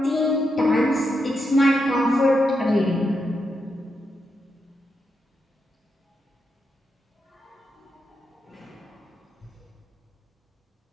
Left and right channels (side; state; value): both; normal; correlation 0.84